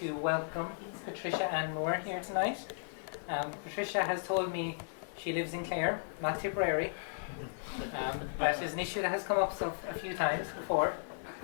welcome Patricia Ann Moore here tonight. Patricia has told me she lives in Clare, not Tipperary. That is an issue that has come up a few times before.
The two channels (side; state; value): right; silent; digital silence